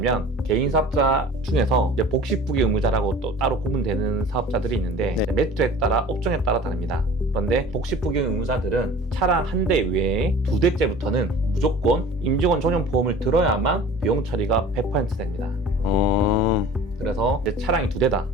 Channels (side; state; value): both; normal; correlation 0.43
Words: 개인 사업자 중에서 이제 복식부기 의무자라고 또 따로 구분되는 사업자들이 있는데 네. 매출에 따라 업종에 따라 다릅니다. 그런데 복식부기 의무자들은 차량 한 대 외에 2대째부터는 무조건 임직원 전용 보험을 들어야만 비용 처리가 100% 됩니다. 그래서 이제 차량이